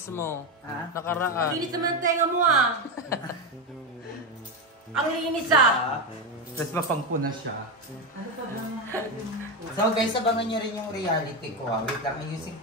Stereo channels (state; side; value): normal; both; correlation 0.12